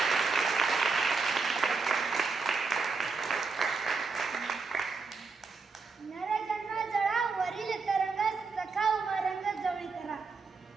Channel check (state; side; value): quieter; left; 4.5 dB